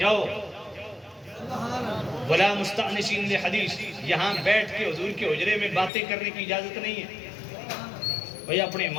ولا مستأنسین لحدیث، یہاں بیٹھ کے حضور کے حجرے میں باتیں کرنے کی اجازت نہیں ہے. بھئی اپنے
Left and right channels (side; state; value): right; drops out; at 5.9 s